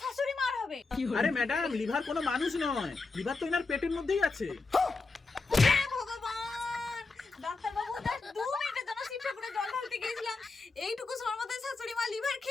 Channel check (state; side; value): quieter; right; 4.0 dB